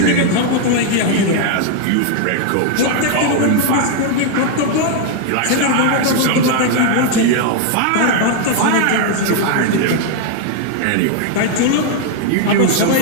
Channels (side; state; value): both; different; correlation 0.00